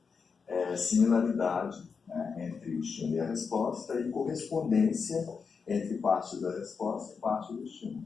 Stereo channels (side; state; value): right; quieter; 5.5 dB